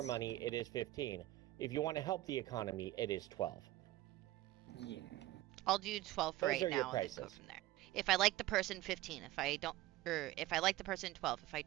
money, it is 15. If you want to help the economy, it is 12. yeah, I'll do 12 for Those right are your now and then go prices. from there. If I like the person, 15. If I don't, or if I like the person, 12. If I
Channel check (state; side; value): quieter; left; 16.5 dB